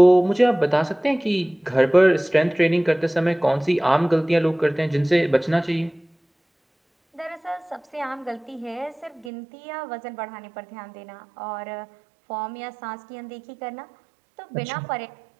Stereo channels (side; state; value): left; drops out; at 9.3 s